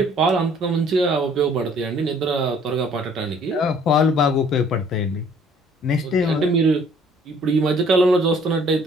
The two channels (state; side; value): normal; both; correlation 0.57